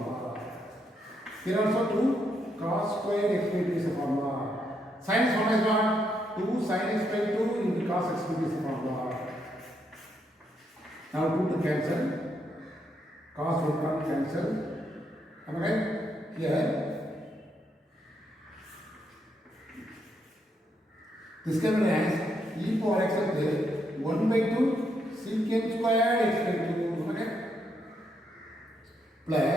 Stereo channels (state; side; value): normal; both; correlation 0.77